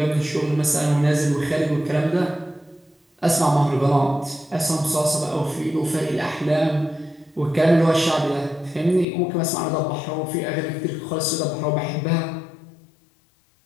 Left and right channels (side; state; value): right; drops out; at 9.1 s